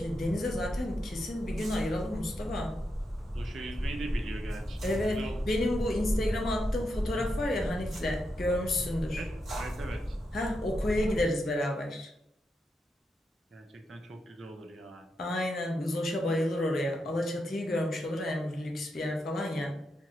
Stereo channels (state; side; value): normal; both; correlation 0.85